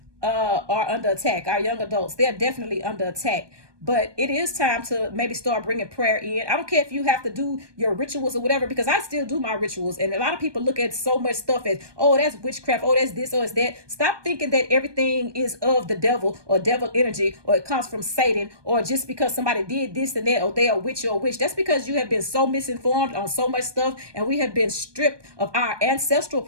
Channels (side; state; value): left; late; 1.2 ms